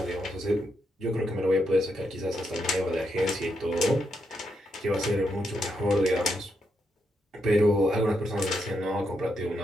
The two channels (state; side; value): normal; both; correlation 0.81